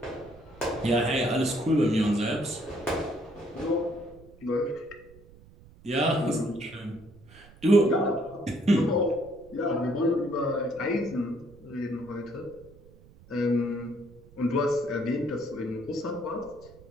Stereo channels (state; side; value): noise; right; rumble, 23 dB below the sound